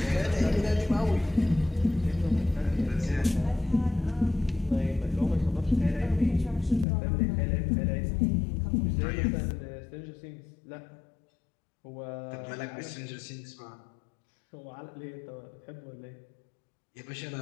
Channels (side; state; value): right; drops out; at 6.9 s